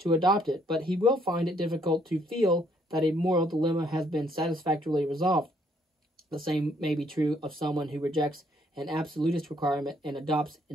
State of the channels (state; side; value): normal; both; correlation 0.67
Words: adopt it, but he will find it difficult to feel that a moral dilemma has been satisfactorily resolved. The same may be true of someone who rejects an absolutist requirement and adopts